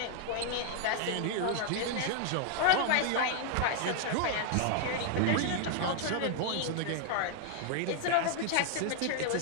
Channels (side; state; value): both; different; correlation 0.00